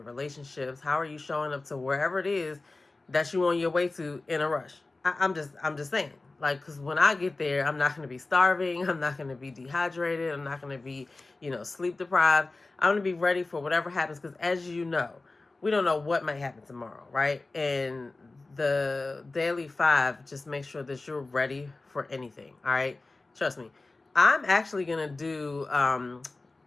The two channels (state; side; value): quieter; right; 3.3 dB